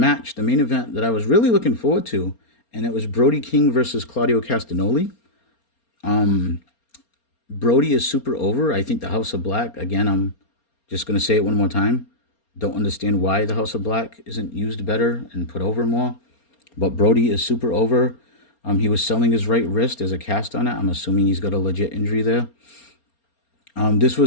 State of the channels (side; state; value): right; late; 4.3 ms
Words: the main event that I was really looking forward to, and it was Brody King versus Claudio Castagnoli. Brody is super over. I think the House of Black, again, I'm just going to say it one more time. Don't understand why the House of Black isn't used better and put over more. But Brody is super over. He was selling his right wrist as a cast on it. I'm assuming he's got a legit injury there. This